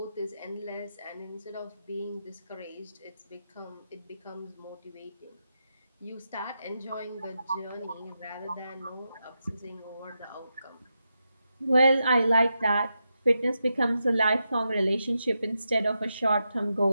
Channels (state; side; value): inverted; both; correlation -0.87